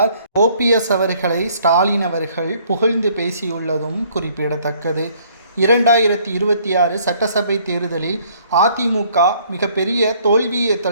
ஓபிஎஸ் அவர்களை ஸ்டாலின் அவர்கள் புகழ்ந்து பேசியுள்ளதும் குறிப்பிடத்தக்கது. 2026 சட்டசபை தேர்தலில் அதிமுக மிகப்பெரிய தோல்வியை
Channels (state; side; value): inverted; both; correlation -0.62